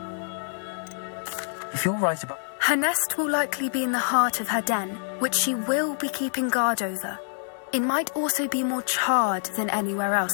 If you're right about... Her nest will likely be in the heart of her den, which she will be keeping guard over. It might also be more charred than anywhere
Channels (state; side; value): silent; right; digital silence